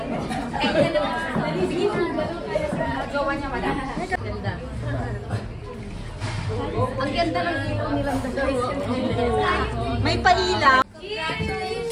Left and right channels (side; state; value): both; identical; correlation 1.00